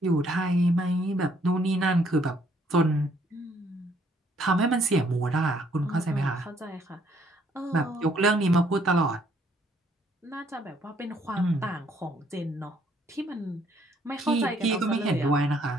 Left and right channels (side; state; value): both; normal; correlation 0.66